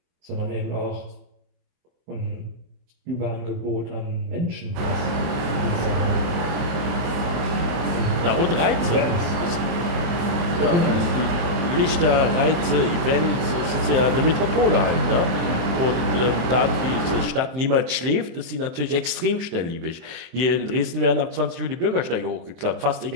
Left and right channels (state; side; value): late; left; 23 ms